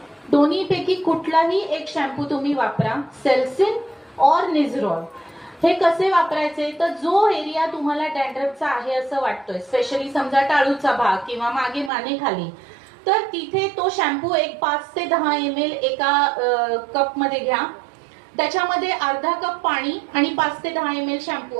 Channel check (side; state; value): left; drops out; at 11.9 s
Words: दोन्हीपैकी कुठलाही एक शॅम्पू तुम्ही वापरा, सेल्सिन और निझरॉल. हे कसे वापरायचे तर जो एरिया तुम्हाला डॅन्ड्रफचा आहे असं वाटतोय, स्पेशली समजा टाळूचा भाग किंवा मागे मानेखाली, तर तिथे तो शॅम्पू एक 5 ते 10 ml एका कप मध्ये घ्या. त्याच्यामध्ये अर्धा कप पाणी आणि 5 ते 10 ml शॅम्पू